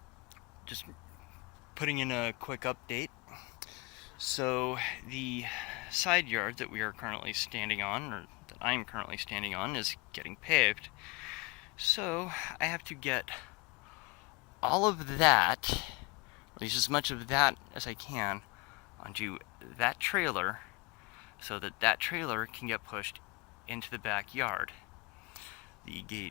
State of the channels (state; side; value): quieter; right; 25.8 dB